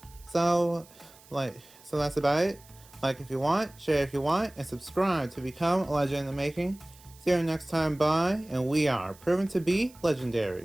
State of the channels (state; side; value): noise; right; hiss, 24 dB below the sound